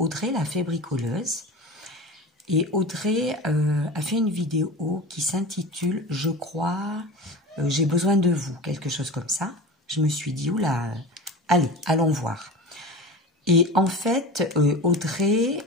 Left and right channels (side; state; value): both; normal; correlation 0.31